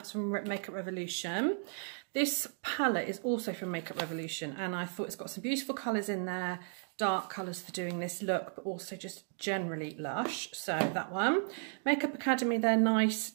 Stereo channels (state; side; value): silent; left; 55 dB below the other